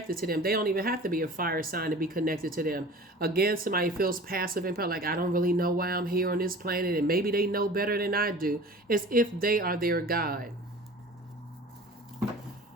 to them, they don't even have to be a fire sign to be connected to them. Again, somebody feels passive and like, I don't really know why I'm here on this planet, and maybe they know better than I do. As if they are their guide.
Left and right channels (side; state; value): both; normal; correlation 0.41